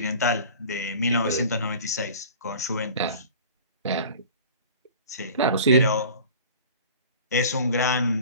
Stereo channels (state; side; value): inverted; both; correlation -0.41